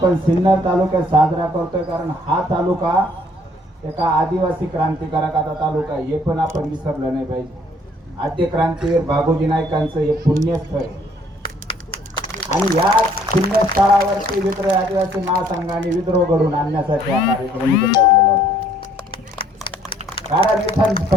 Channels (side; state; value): both; normal; correlation 0.61